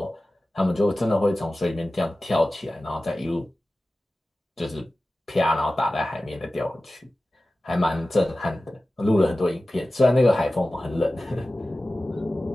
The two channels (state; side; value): normal; both; correlation 0.96